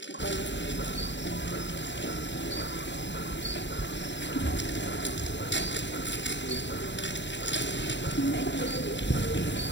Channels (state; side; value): late; right; 0.52 ms